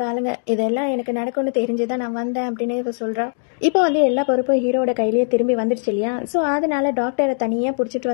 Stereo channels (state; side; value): silent; right; digital silence